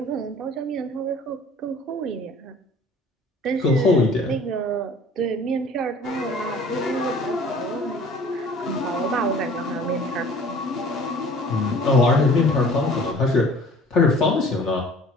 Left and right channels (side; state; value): both; normal; correlation 0.49